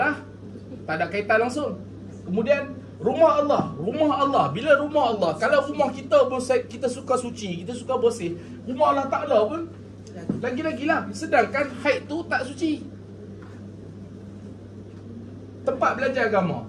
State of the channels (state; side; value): identical; both; correlation 1.00